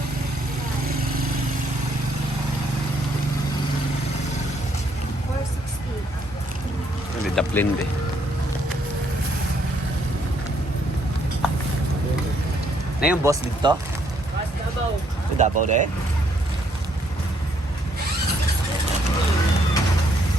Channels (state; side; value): normal; both; correlation 0.70